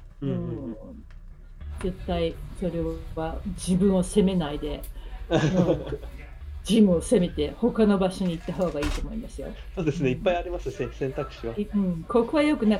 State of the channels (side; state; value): both; identical; correlation 1.00